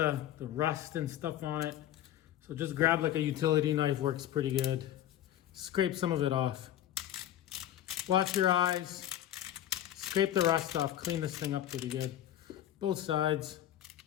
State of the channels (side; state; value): right; quieter; 12.0 dB